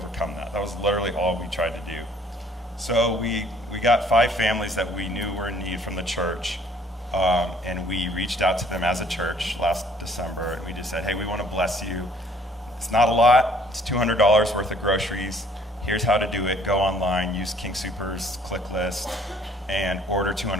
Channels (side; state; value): both; normal; correlation 0.59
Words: that? That was literally all we tried to do. So we got 5 families that we knew were in need from the church, and we reached out to them as a church last December, and we just said, hey, we want to bless you. It's not a lot. It's $200 worth of groceries. Here's how to do it. Go online, use King Soopers click list, and order